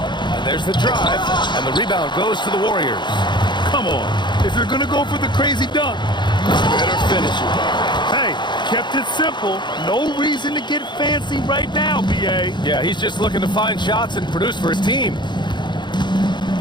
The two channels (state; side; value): late; right; 0.22 ms